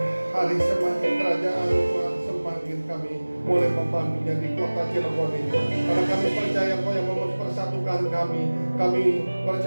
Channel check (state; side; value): inverted; both; correlation -1.00